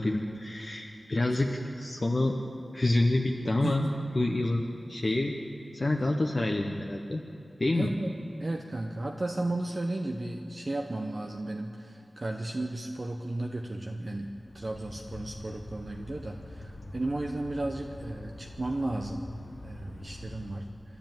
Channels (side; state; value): both; normal; correlation 0.96